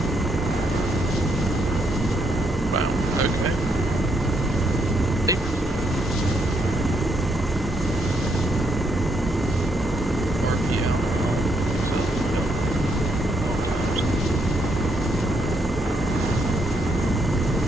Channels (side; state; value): both; normal; correlation 0.75